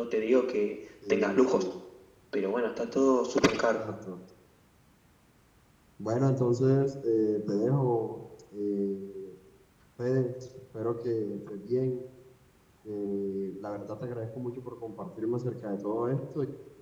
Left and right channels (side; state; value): both; identical; correlation 1.00